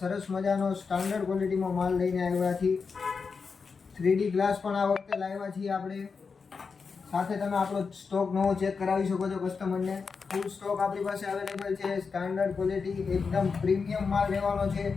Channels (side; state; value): right; quieter; 5.2 dB